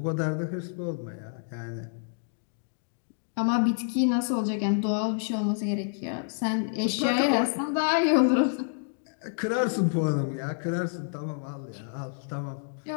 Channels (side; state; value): right; silent; digital silence